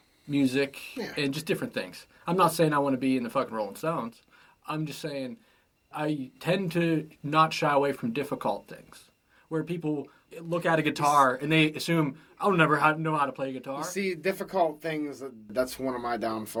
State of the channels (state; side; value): identical; both; correlation 1.00